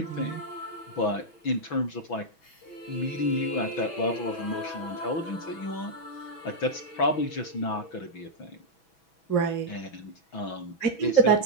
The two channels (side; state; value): right; late; 6.1 ms